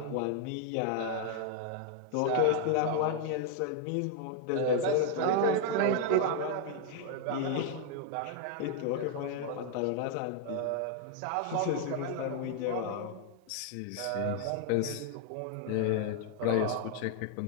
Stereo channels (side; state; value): both; different; correlation 0.00